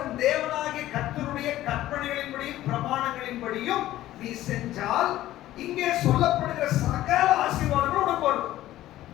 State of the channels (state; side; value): quieter; right; 14.5 dB